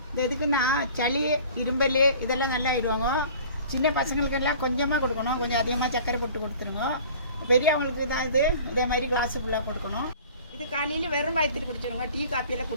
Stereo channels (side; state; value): both; inverted; correlation -0.46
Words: எதுக்குன்னா சளி, இரும்பல் இதெல்லாம் நல்லா ஆயிடுவாங்க. சின்ன பசங்களுக்கெல்லாம் கொஞ்சமாக கொடுக்கணும், கொஞ்சம் அதிகமாக சர்க்கரை போட்டு கொடுத்துருங்க. பெரியவங்களுக்கு தான் இதே மாதிரி கிளாஸு ஃபுல்லாக கொடுக்கணும். இது காலையில் வெறும் வயிற்றுட்டு குடிச்சிடுங்க. டீ காப்பியெல்லாம்